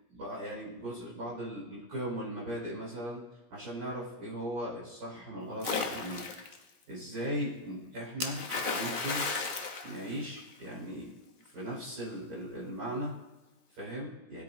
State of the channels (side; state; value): left; late; 17 ms